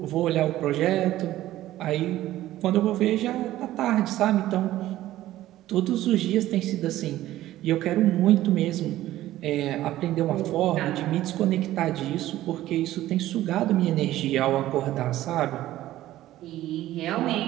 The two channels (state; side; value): quieter; left; 14.6 dB